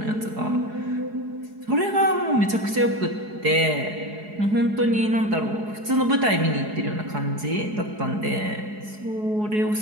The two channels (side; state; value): left; late; 4.8 ms